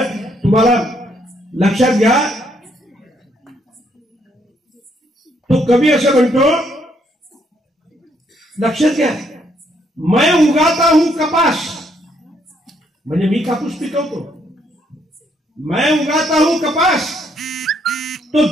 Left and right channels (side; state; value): both; normal; correlation 0.71